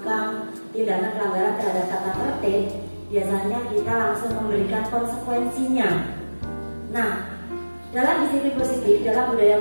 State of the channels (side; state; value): both; inverted; correlation -1.00